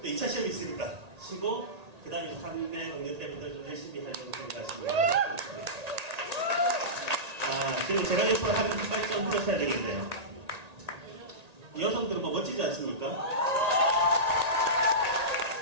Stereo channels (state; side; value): late; left; 1.8 ms